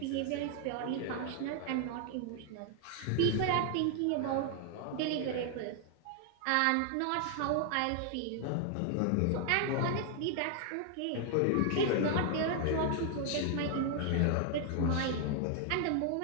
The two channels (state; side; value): different; both; correlation 0.00